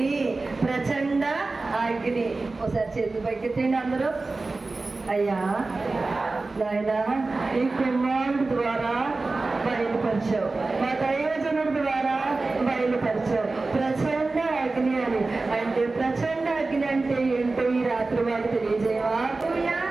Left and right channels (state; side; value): quieter; left; 3.5 dB